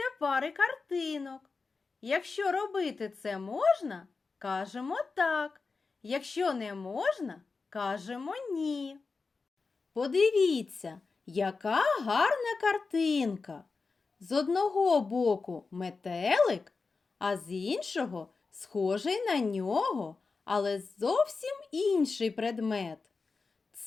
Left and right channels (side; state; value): right; quieter; 4.3 dB